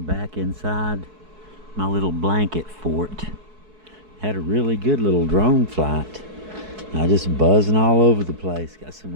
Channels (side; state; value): left; late; 4.6 ms